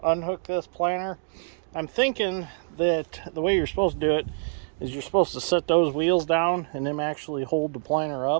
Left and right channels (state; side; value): silent; left; digital silence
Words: unhook this planter. I'm thinking that the way you're supposed to do it is you're supposed to set those wheels down and then actually hold the planter